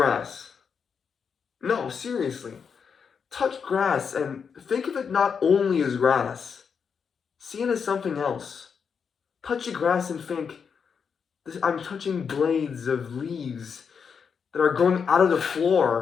No, seriously. Touch grass and think of it not only as grass. See it as something else. Touch the grass and think, I'm touching blades of leaves that are growing out of the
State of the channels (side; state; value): right; quieter; 6.4 dB